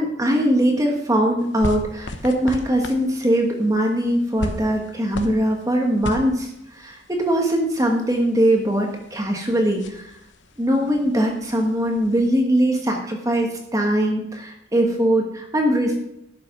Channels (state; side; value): normal; both; correlation 0.77